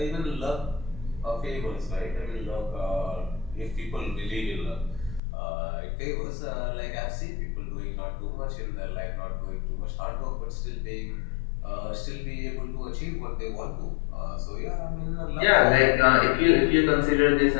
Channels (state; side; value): drops out; right; at 5.2 s